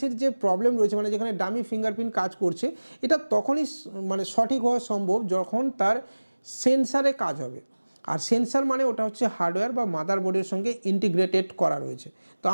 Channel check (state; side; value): inverted; both; correlation -1.00